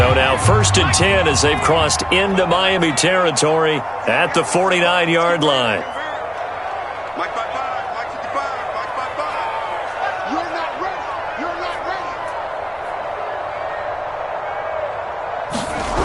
now 1st and 10 as they've crossed into Miami territory at the 49-yard line. Mike 55, Mike 55, Mike 55. You're not ready. You're not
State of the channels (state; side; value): identical; both; correlation 1.00